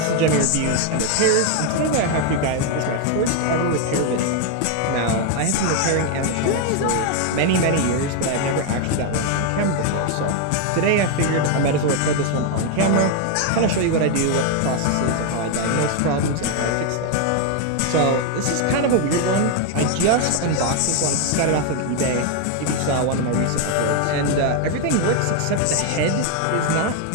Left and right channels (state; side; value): different; both; correlation 0.01